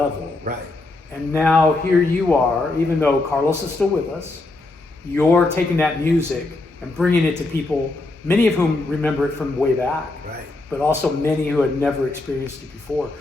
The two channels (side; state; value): right; quieter; 3.0 dB